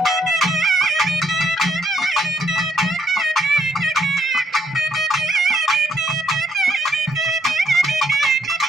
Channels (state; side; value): normal; both; correlation 0.71